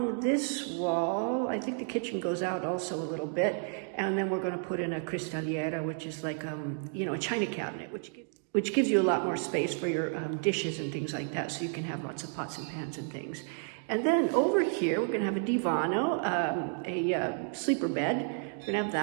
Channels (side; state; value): left; silent; 57 dB below the other